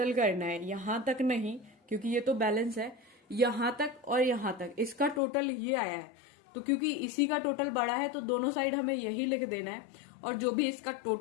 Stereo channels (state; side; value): drops out; right; at 5.2 s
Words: करना है, यहां तक नहीं क्योंकि ये तो बैलेंस है, यहां तक और यहां तक, इसका टोटल ये आया है। तो क्योंकि इसी का टोटल बड़ा है तो दोनों साइड हमें यही लिख देना है, और जो भी इसका